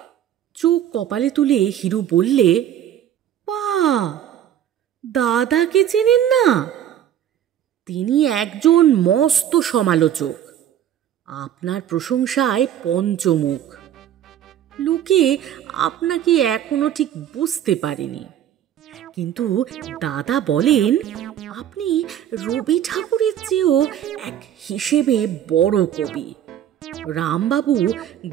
চোখ কপালে তুলে হিরু বললে, পা, দাদাকে চেনেন না? তিনি একজন মস্ত সমালোচক, আপনার প্রশংসায় পঞ্চমুখ। লোকে আপনাকে এখনো ঠিক বুঝতে পারেনি, কিন্তু দাদা বলেন আপনি রবি ঠাকুরের চেয়েও এক হিসেবে বড় কবি। রামবাবু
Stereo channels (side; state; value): left; quieter; 10.6 dB